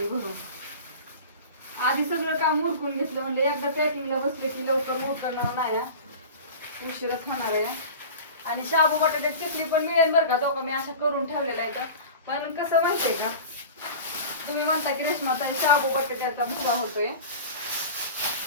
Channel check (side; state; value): both; inverted; correlation -0.35